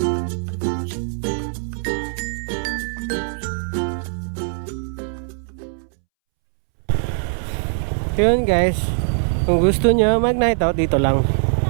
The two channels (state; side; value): silent; left; 65 dB below the other